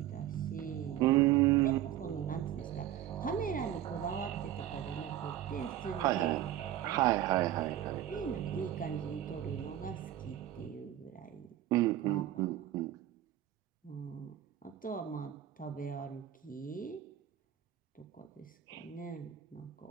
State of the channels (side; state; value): left; quieter; 12.1 dB